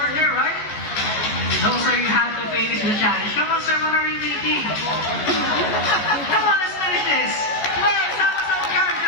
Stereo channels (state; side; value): late; right; 14 ms